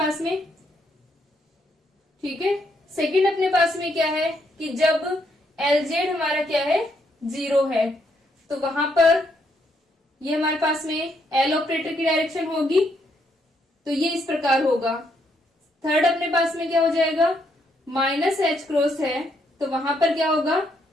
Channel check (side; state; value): both; normal; correlation 0.74